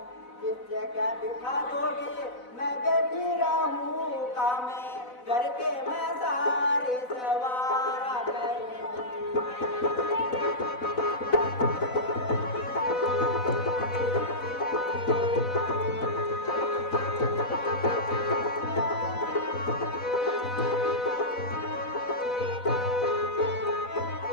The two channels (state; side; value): late; right; 4.0 ms